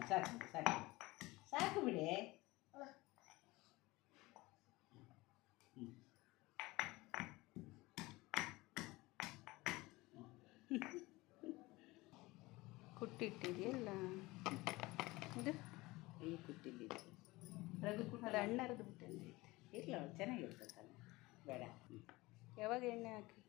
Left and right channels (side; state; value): right; quieter; 21.1 dB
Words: ಸಾಕು ಸಾಕು ಸಾಕು ಬಿಡೆ. ಕುಟ್ಟಿಟ್ಟಿದೆಯಲ್ಲ ಇದು ಈ ಕುಟ್ಟಿಲ್ಲಿದ್ದು ರಗು ಅದು ಹಣ್ಣು ಅರ್ದು ಬಿಟ್ಟಂಗೆ ಇಲ್ಲ ಚೆನ್ನಾಗಿರ್ತದಲ್ಲ. ಬೇಡ. ಯಾವಾಗ ಎಣ್ಣೆ